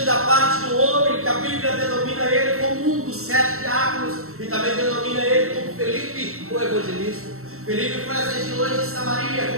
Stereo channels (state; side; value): late; left; 0.63 ms